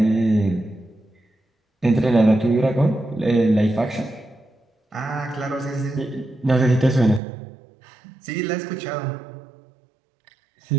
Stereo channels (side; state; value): left; drops out; at 7.2 s